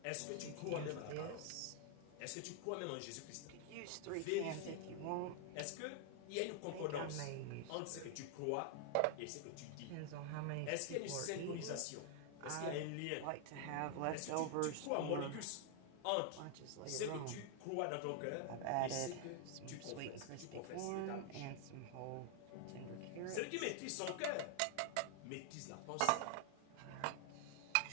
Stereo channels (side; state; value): both; different; correlation 0.00